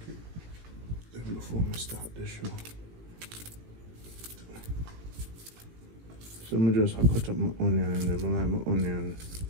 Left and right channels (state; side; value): late; left; 18 ms